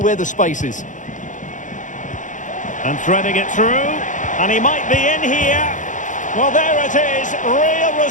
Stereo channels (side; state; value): right; late; 0.37 ms